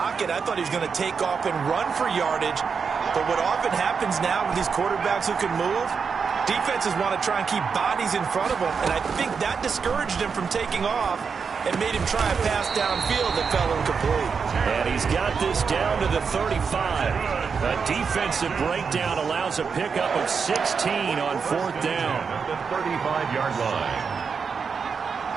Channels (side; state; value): left; quieter; 5.8 dB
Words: I thought he was going to take off and run for yardage. But what often happens now with these quarterbacks who can move, defenses want to try and keep bodies in front of them. And I think that discouraged him from taking off and made him try a pass downfield that fell incomplete. And he's got this down to the 35. A defensive breakdown allows a pickup of 16 on 4th down. At the 35-yard line.